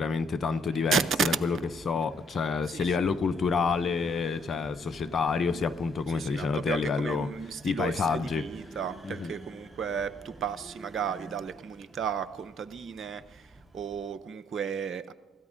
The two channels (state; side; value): normal; both; correlation 0.68